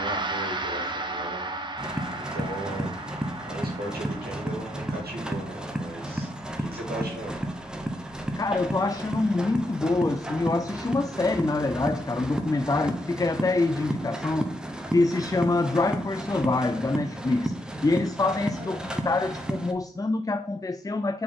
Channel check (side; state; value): both; normal; correlation 0.79